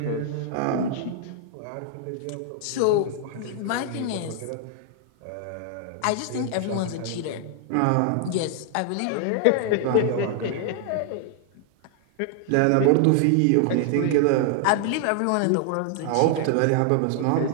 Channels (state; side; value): different; both; correlation 0.00